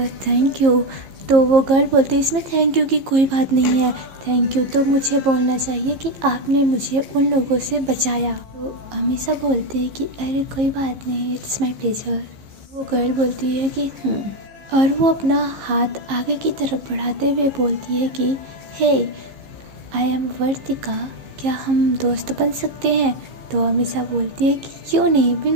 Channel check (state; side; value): late; left; 15 ms